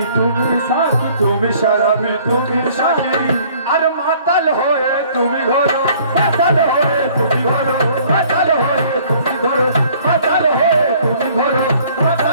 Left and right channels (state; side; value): inverted; both; correlation -0.56